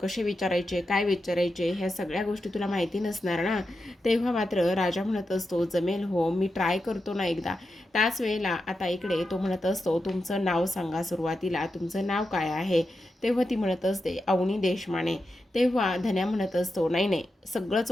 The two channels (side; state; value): both; normal; correlation 0.88